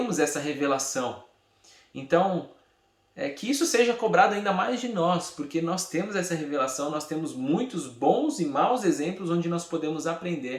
essa revelação. Então, que isso seja cobrado ainda mais de nós, porque nós temos essa revelação, nós temos muitos bons e maus exemplos onde nós podemos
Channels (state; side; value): identical; both; correlation 1.00